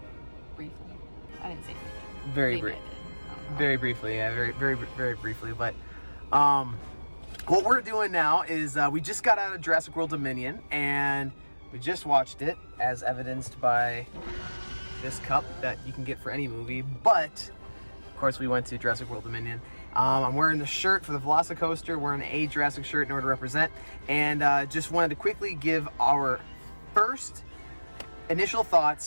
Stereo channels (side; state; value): both; inverted; correlation -1.00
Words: Briefly. I didn't see it. Very briefly, yeah, very briefly. But what we're doing now is we just got out of Jurassic World Dominion, and we just watched it, as evidenced by this cup that you can get for any movie. But of course, we went to Jurassic World Dominion. I'm wearing the shirt for the Velocicoaster, wearing a Jurassic shirt in order to represent, and just wanted to quickly give our first initial